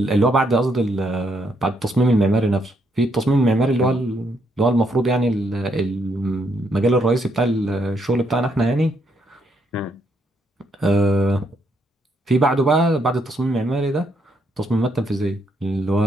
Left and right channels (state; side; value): normal; both; correlation 0.74